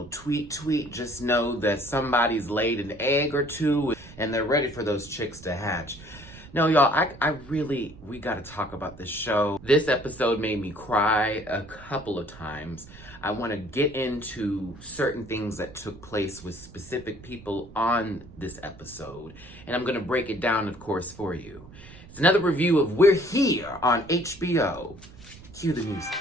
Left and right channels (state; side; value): noise; right; rumble, 19 dB below the sound